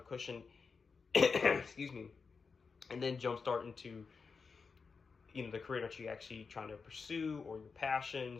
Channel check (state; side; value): quieter; right; 5.1 dB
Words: cushion, excuse me, and then jumpstart into, the career that you're actually trying to pursue, or your